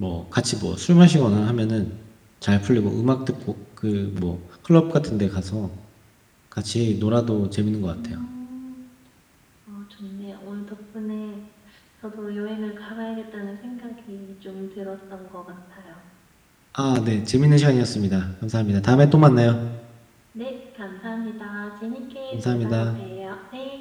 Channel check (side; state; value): both; identical; correlation 1.00